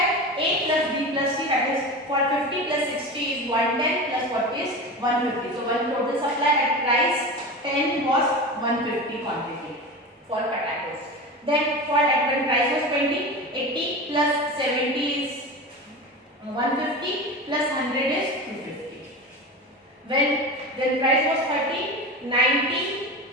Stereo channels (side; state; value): both; normal; correlation 0.27